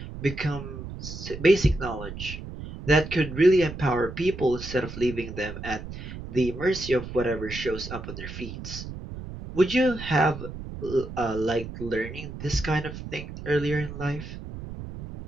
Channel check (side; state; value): right; noise; rumble, 10 dB below the sound